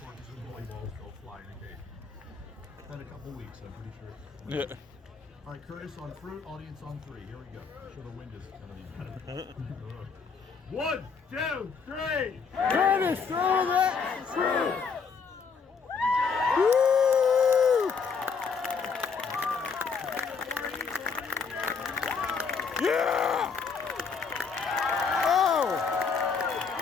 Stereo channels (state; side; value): quieter; right; 5.5 dB